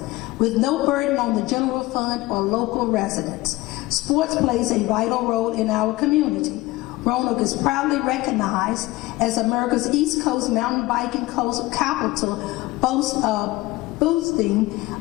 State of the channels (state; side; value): quieter; right; 19.7 dB